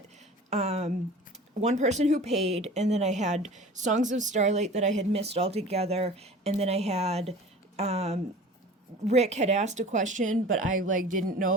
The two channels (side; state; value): both; normal; correlation 0.40